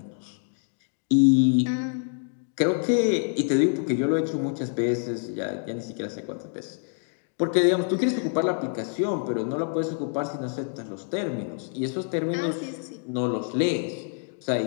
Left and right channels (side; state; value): right; silent; 60 dB below the other